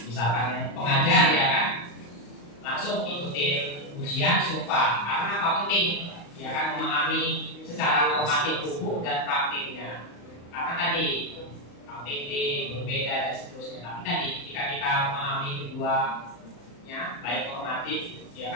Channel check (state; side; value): late; right; 35 ms